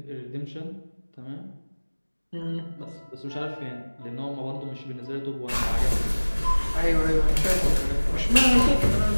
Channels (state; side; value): inverted; both; correlation -1.00